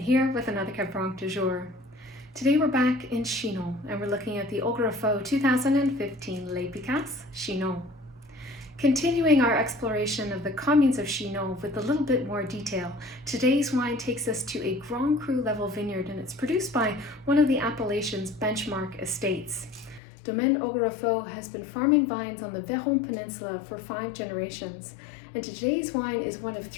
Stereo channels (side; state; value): right; drops out; at 20.0 s